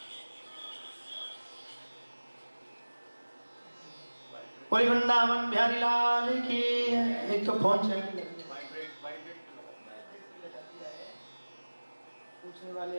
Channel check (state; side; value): inverted; both; correlation -1.00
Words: कोई वृंदावन बिहारी लाल की। एक तो फोन चल पूछने वाले